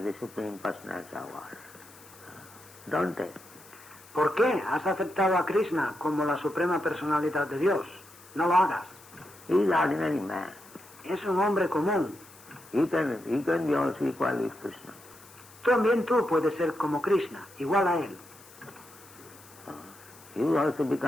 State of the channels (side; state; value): left; noise; hiss, 22 dB below the sound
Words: the Supreme Personality of God? Don't take. ¿Por qué has aceptado a Krishna como la suprema personalidad de Dios? No lo hagas. He is ordinary man. Es un hombre común. He can be also equal with Krishna. También tú puedes ser como Krishna, igual a él. You also